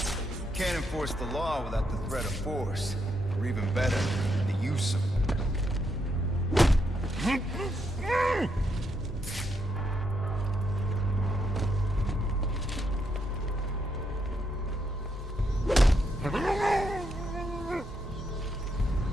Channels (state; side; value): normal; both; correlation 0.79